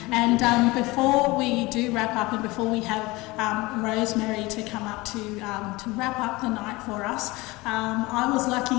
And before we do wrap up and before we have Rosemary to come up to wrap up the night for us, I was lucky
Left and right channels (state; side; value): quieter; right; 22.0 dB